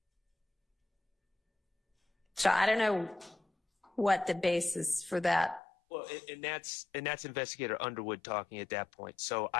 So I don't know what the basis for that. Well, and that's Investigator Underwood talking at that point. So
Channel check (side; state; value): right; drops out; at 5.6 s